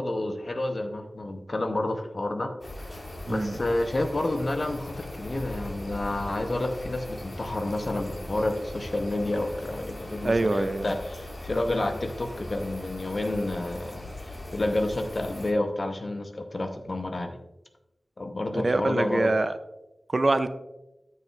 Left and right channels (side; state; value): both; normal; correlation 0.96